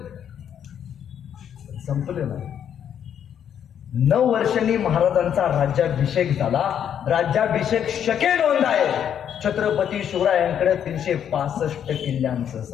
संपलं नाही. 9 वर्षांनी महाराजांचा राज्याभिषेक झाला. राज्याभिषेक शके नोंद आहे. छत्रपती शिवरायांकडे 365 किल्ल्यांचं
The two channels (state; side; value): quieter; right; 9.0 dB